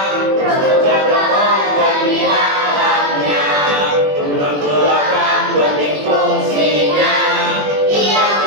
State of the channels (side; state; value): left; late; 21 ms